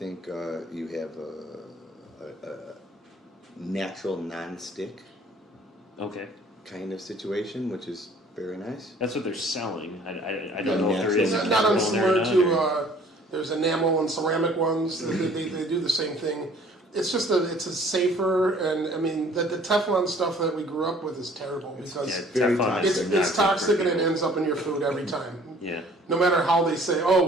you have a natural non-stick Okay. kind of situation, which is very nice. That's what they're selling. I don't know if there is It's a not chemical in there or unsimilar not, to there's enamel and ceramic ones. They do the same thing. It's just it's a safer, and I mean the Teflon stuff that we grew up with is terrible because Yeah, very Teflon is toxic. not it's good for toxic and it people. ends up in your food every time. Yeah. No matter how they say,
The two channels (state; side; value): normal; both; correlation 0.54